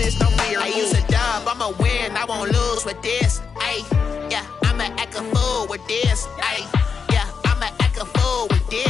no fear. I use a dub, I'ma win, I won't lose with this. Yeah, I'ma act a fool with this. Yeah, I'ma act a fool with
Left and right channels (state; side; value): quieter; right; 5.9 dB